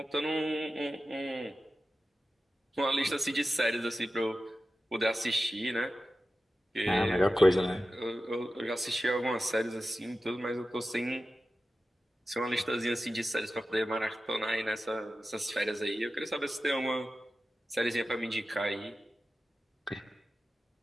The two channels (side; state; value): both; normal; correlation 0.93